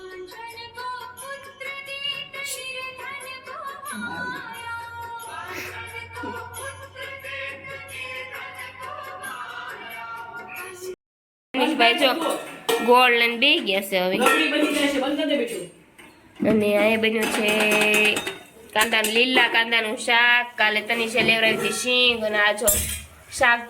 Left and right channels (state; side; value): identical; both; correlation 1.00